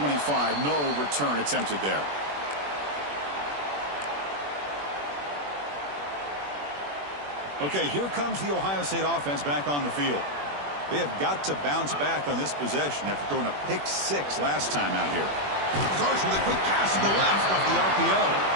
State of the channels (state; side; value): late; left; 21 ms